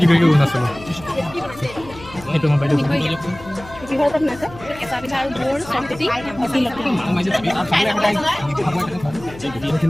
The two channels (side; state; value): left; noise; hum, 18 dB below the sound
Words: কৰিলোঁ অৰুণাচলৰ সেইটো মই বাইদেউ